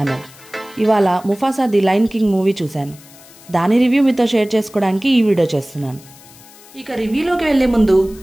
ఇవాళ Mufasa the lion king movie చూశాను. దాని రివ్యూ మీతో షేర్ చేసుకోవడానికి ఈ వీడియో చేస్తున్నాను. ఇక రివ్యూలోకి వెళ్లే ముందు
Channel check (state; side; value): noise; left; hiss, 23 dB below the sound